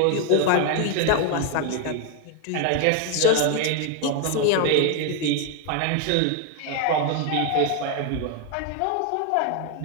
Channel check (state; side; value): different; both; correlation 0.01